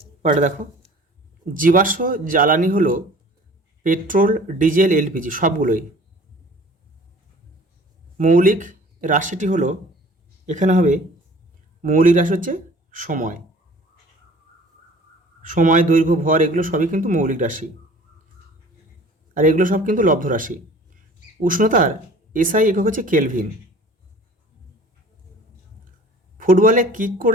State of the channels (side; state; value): both; normal; correlation 0.48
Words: পরে দেখো, জীবাশ্ম জ্বালানি হলো পেট্রোল, ডিজেল, এলপিজি সবগুলোই। মৌলিক রাশিটি হলো, এখানে হবে মৌলিক রাশি হচ্ছে সময়, সময়, দৈর্ঘ্য, ভর এগুলো সবই কিন্তু মৌলিক রাশি, আর এগুলো সব কিন্তু লব্ধ রাশি। উষ্ণতার এসআই একক হচ্ছে কেলভিন। ফুটবলে কিক